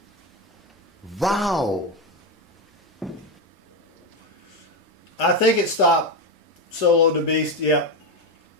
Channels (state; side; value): normal; both; correlation 0.11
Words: Wow. I think it stopped Solo the beast. Yep.